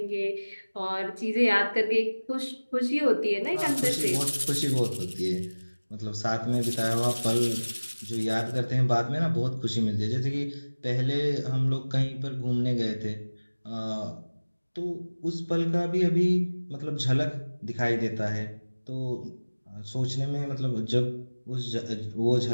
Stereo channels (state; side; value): inverted; both; correlation -1.00